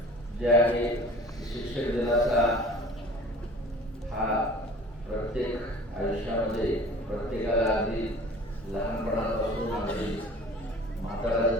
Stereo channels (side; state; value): both; normal; correlation 0.45